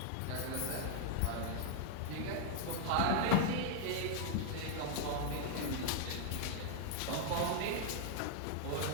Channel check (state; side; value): different; both; correlation 0.00